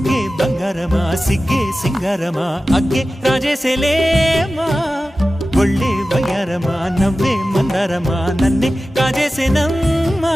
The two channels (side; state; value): both; normal; correlation 0.95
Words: బంగారమా సిగ్గే సింగారమా అగ్గే రాజేసేలేమా ఒళ్ళే వయ్యారమా నవ్వే మందారమా నన్నే కాజేసేనమ్మా